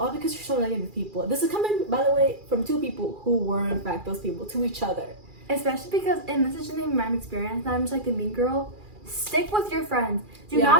because you're so negative people. This is coming, by the way, from two people who were, in fact, those people to each other. Especially because, and this is just my experience, and I'm just like the mean girl, stick with your friends. Do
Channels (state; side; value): late; left; 2.4 ms